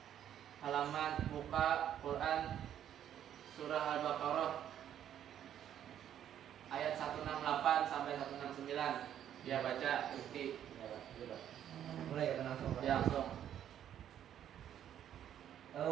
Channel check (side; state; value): left; quieter; 10.3 dB